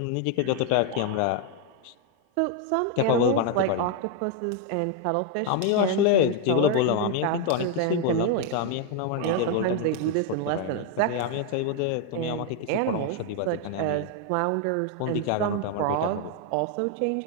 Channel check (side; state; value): both; different; correlation 0.00